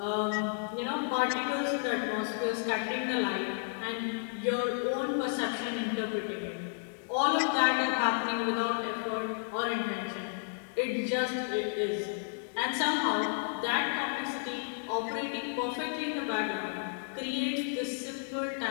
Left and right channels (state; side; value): silent; right; digital silence